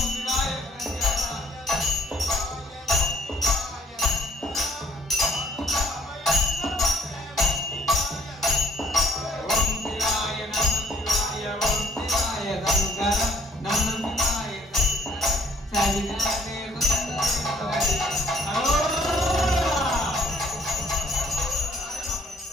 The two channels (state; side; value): normal; both; correlation 0.62